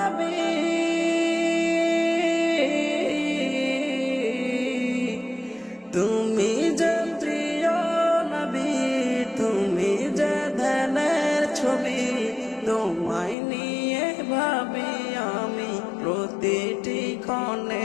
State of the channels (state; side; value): drops out; right; at 13.4 s